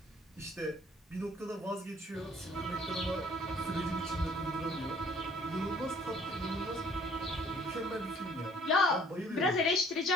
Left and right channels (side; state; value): both; normal; correlation 0.58